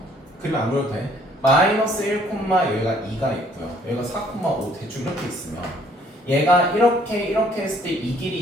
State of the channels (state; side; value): normal; both; correlation 0.61